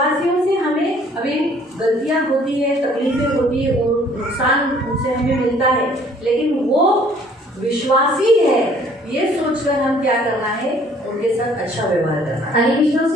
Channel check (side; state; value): both; normal; correlation 0.58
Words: से हमें अभी गलतियाँ होती है, तकलीफें होती है, नुकसान उनसे हमें मिलता है, लेकिन वो विश्वासी है ये सोचकर हम क्या करना है? उनके साथ अच्छा व्यवहार करना है। आणि